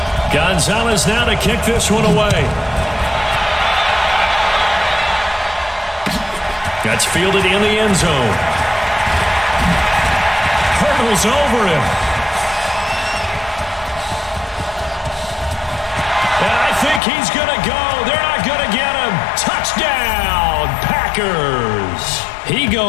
Gonzalez now to kick this one away. That's fielded in the end zone. Hurdles over him. And I think he's going to go. They're not going to get him. Touchdown, Packers. He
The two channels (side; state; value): right; drops out; at 17.0 s